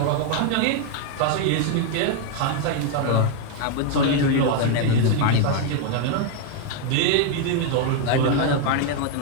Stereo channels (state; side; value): different; both; correlation 0.00